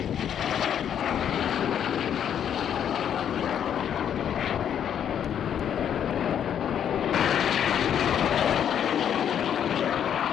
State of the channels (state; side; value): quieter; right; 9.1 dB